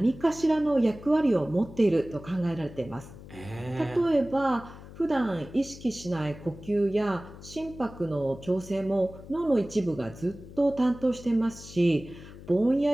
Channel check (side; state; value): left; noise; hum, 16 dB below the sound